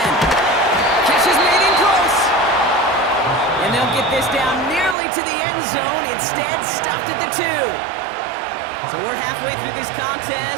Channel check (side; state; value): left; drops out; at 5.0 s